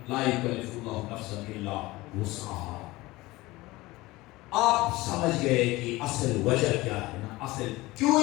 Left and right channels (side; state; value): right; quieter; 20.0 dB